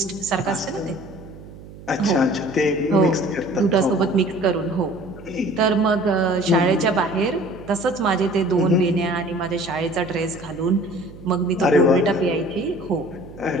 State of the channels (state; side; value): noise; right; hum, 17 dB below the sound